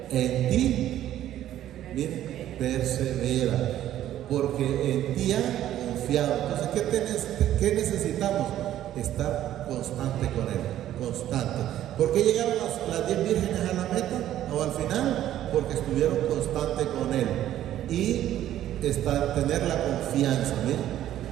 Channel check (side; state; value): left; quieter; 12.3 dB